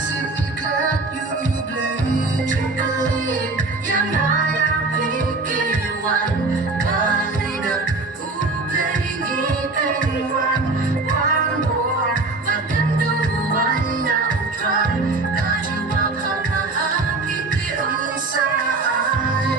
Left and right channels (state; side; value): quieter; left; 3.5 dB